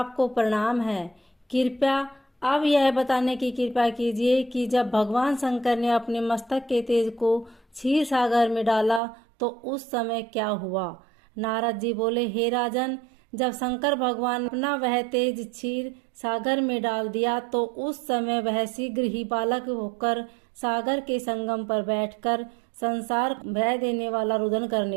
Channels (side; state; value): left; drops out; at 9.0 s